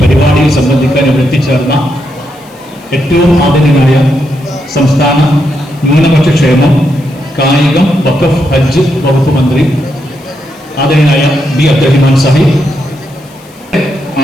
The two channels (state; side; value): noise; left; hiss, 27 dB below the sound